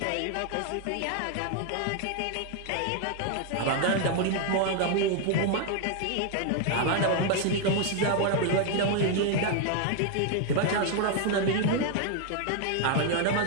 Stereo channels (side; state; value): both; different; correlation 0.01